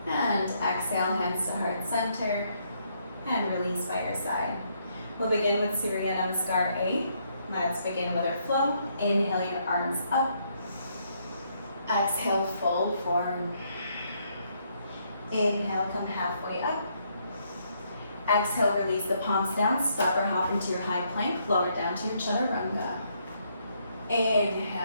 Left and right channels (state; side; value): inverted; both; correlation -0.73